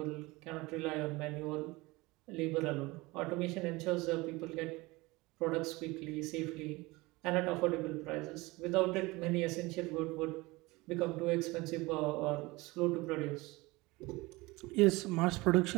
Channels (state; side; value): quieter; left; 22.4 dB